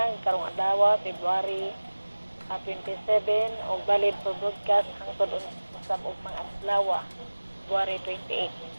karong adlaw February 27 o valid for broadcast hangtod usab og mga adlaw February 28.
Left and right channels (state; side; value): inverted; both; correlation -1.00